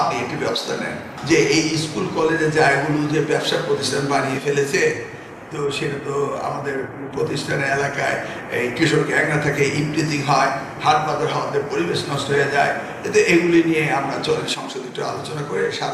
একটি ব্যবস্থা নেন। যে এই স্কুল কলেজের জায়গাগুলো যে ব্যবসা প্রতিষ্ঠান বানিয়ে ফেলেছে, তো সেটা তো আমাদের প্রতিষ্ঠানের এলাকায় এই কৃষক গ্যাংরা থেকে ইমপ্রিজিং হয়, হাট বাজার হওয়াতে পরিবেশ নষ্ট হয়ে যায়। এতে এগুলি নিয়ে আমরা চলেন সংসদে একটু আলোচনা করে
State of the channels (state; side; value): identical; both; correlation 1.00